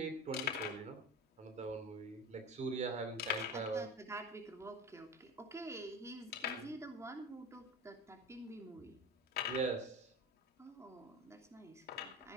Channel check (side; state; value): both; normal; correlation 0.30